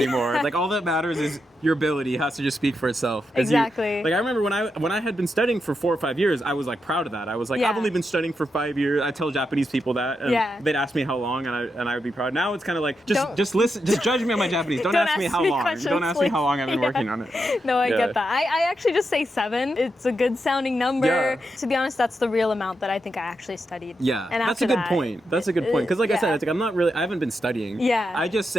Like all that matters is your ability has to just speak for itself. Exactly. Like I remember when I had been studying for 4 or 5 years, I was like proud of that. I was like, I've only been studying for 5 years. I tell Japanese people that, and they'd ask me how long, and I would be proud. Now it's kind of like just listen, just judge me on my Japanese. Don't ask me how long. Don't ask me how long I've been working on it. No, I get that. I actually just say 7. It's a good sounding number. Yeah. To be honest, that's the real amount that I think I actually studied. Yeah, and that's a good point. That's a good point because, like I said, it's like I haven't been studying. Yeah. I just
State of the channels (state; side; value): normal; both; correlation 0.85